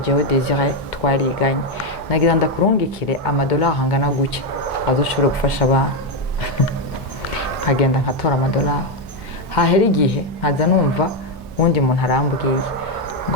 Désiré twariganye, nagira ndakurungikire amadolari angana gutya azoshobora gufasha abantu. Nkagenda nkatora amadolari, hahera igihe nkaza numva wundi muntu arambwiye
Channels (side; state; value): both; normal; correlation 0.06